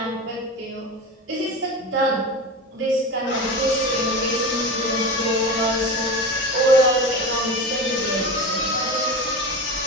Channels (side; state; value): both; normal; correlation 0.27